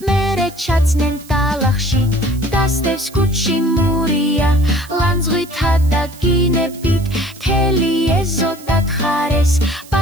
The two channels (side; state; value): right; noise; hiss, 21 dB below the sound